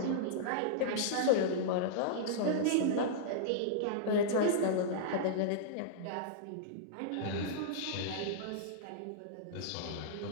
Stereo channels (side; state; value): both; different; correlation -0.02